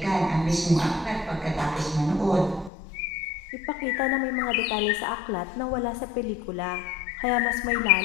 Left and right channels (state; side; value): drops out; right; at 2.7 s